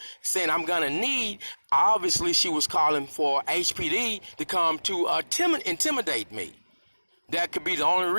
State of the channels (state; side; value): inverted; both; correlation -1.00